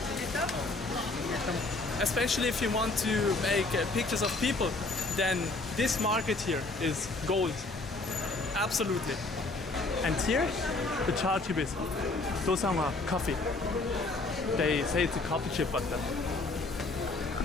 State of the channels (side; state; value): right; quieter; 3.3 dB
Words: Especially if you want to make pictures of people, then this market here is gold. Absolutely. And here, the chachip is dosangwa coffee. They say it's a coffee chip, but